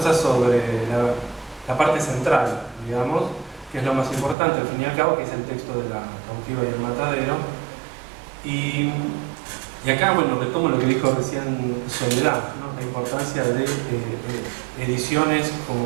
sobre la parte central, digamos, que es lo más importante, al fin y al cabo, que es el texto de La cautiva y el matadero. Y acá, bueno, retomo lo que dijo recién Soledad, ¿no?, la importancia de ediciones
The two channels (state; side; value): drops out; left; at 4.4 s